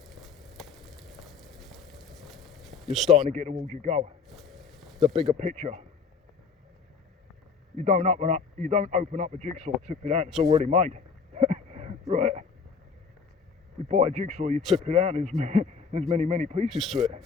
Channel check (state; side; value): quieter; right; 5.4 dB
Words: you're starting to get towards your goal, the bigger picture. You don't open up a jigsaw, tip it out, it's already made. Right? You buy a jigsaw, you tip it out, there's many pieces to it.